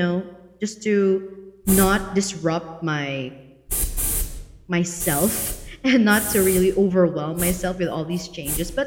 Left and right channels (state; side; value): identical; both; correlation 1.00